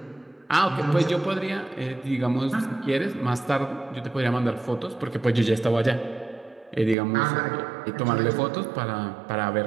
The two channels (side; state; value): left; drops out; at 7.0 s